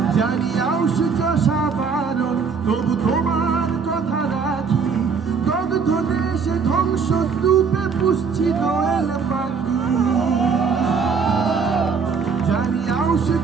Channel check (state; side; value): quieter; left; 5.6 dB